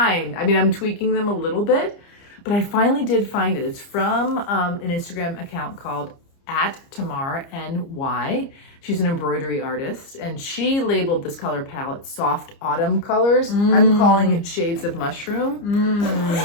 I mean, I'm tweaking them a little bit, but I finally did find it. It's from an Instagram account called @TamarNY. She's an embroidery artist, and she labeled this color palette Soft Autumn Colors. I'm calling it Shades of Mushroom.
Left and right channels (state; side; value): late; right; 30 ms